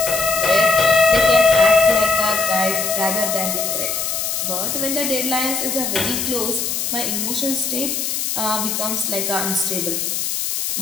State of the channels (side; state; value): left; noise; hiss, 2 dB below the sound